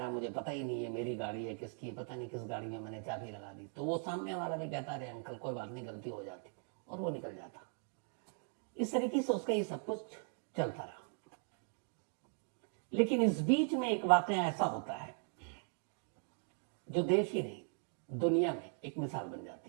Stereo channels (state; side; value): silent; left; 52 dB below the other